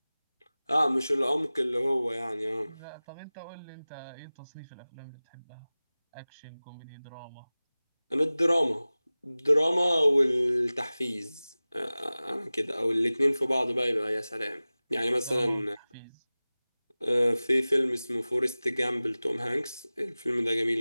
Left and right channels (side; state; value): both; inverted; correlation -0.98